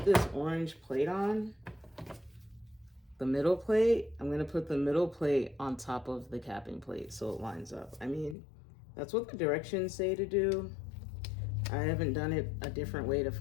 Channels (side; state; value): right; drops out; at 8.3 s